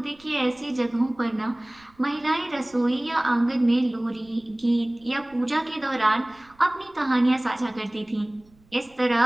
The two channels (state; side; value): noise; right; rumble, 30 dB below the sound